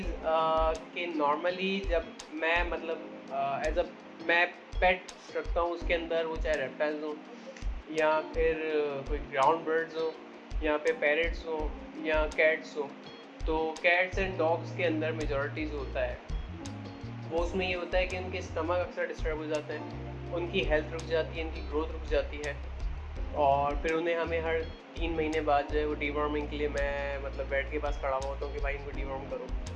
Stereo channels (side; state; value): both; identical; correlation 1.00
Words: कि नॉर्मली जब मैं मतलब एज़ अ मैं पेट्स रखता हूँ उसके अंदर, वो चाहे रेप्टाइल्स हों या फिर कोई ग्राउंड बर्ड्स हों या फिर पैरट्स हों या कैट्स हों, तो कैट्स एंड डॉग्स के अंदर मेजॉरिटी जो होता है वो उसमें ये होता है कि उनके स्टमक अक्सर डिस्टर्ब हो जाते हैं, उनकी हेल्थ रुक जाती है, उनकी ग्रोथ रुक जाती है और फिर उन्हें हमें हर 3 महीने बाद जो है वो डीवॉर्मिंग के लिए मैं मतलब बेड के पास खड़ा हुआ होता हूँ कि भाई इनको डीवॉर्म करो।